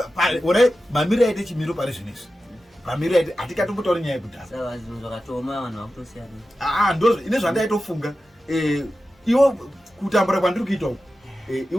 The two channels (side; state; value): both; normal; correlation 0.93